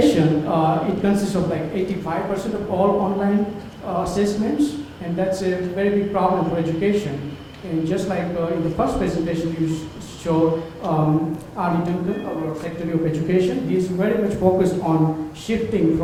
it consists of like 85% of all online assessments, and that's a very big problem for education. And just like in the first presentation you showed, Ali Dundon, our Secretary of Education, he's very much focused on shifting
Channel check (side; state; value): both; identical; correlation 1.00